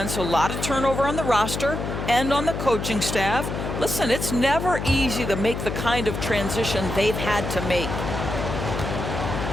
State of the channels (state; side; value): noise; left; hum, 4 dB below the sound